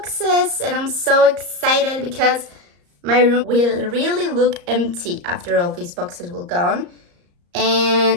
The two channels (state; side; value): late; left; 34 ms